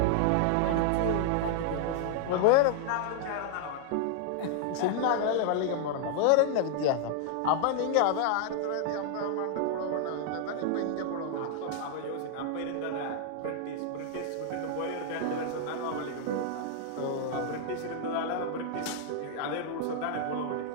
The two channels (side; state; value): both; different; correlation -0.01